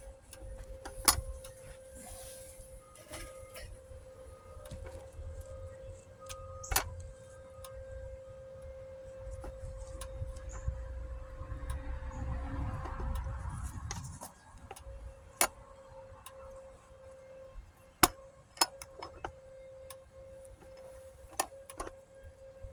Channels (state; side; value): identical; both; correlation 1.00